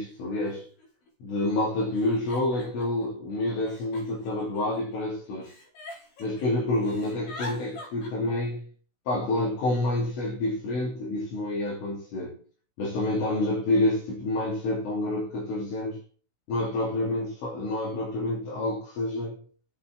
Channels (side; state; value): right; late; 16 ms